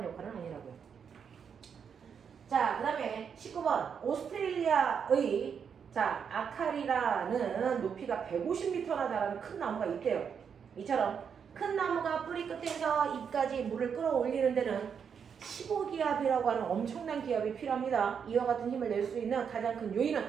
역할은 아니라고요. 자, 그 다음에 19번. 오스트레일리아의 자, 아카리라는 높이가 150m나 달하는 큰 나무가 있대요. 이처럼 큰 나무가 뿌리 끝에서 잎까지 물을 끌어올리는 데는 15기압이라고 하는 엄청난 기압이 필요합니다. 이와 같은 힘을 낼 수 있는 가장 큰 요인은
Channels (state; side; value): quieter; left; 7.0 dB